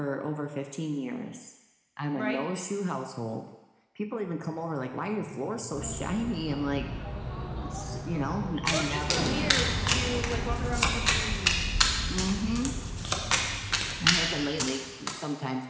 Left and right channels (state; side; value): identical; both; correlation 1.00